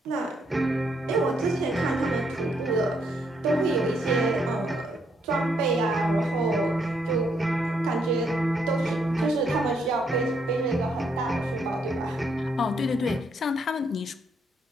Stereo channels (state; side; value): normal; both; correlation 0.74